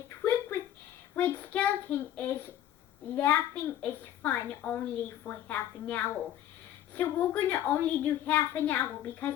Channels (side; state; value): right; quieter; 11.7 dB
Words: trick with Red Skelton is laughing is fun only for half an hour. So we're going to only do half an hour because